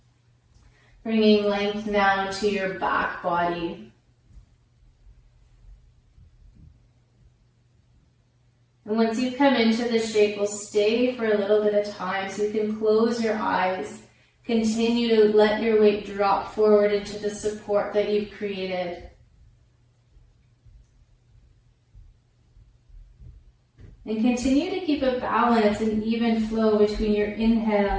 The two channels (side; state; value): both; identical; correlation 1.00